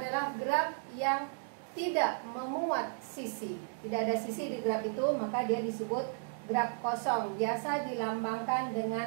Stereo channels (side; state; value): left; silent; digital silence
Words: graf yang tidak memuat sisi. Tidak ada sisi di graf itu, maka dia disebut graf kosong. Biasa dilambangkan